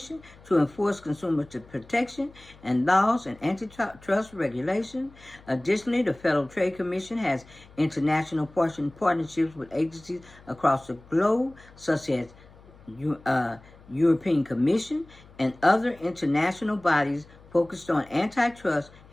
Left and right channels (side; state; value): left; noise; hum, 24 dB below the sound